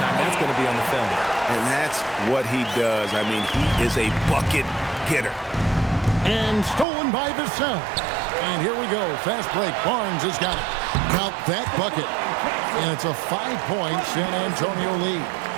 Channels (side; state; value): left; drops out; at 6.9 s